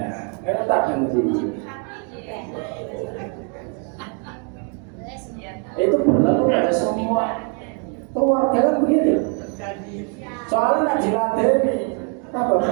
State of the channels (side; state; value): left; quieter; 39.3 dB